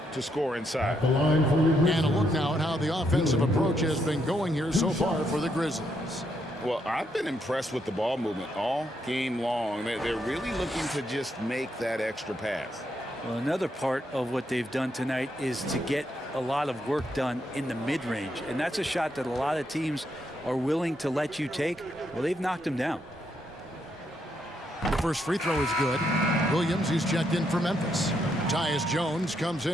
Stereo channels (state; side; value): normal; both; correlation 0.77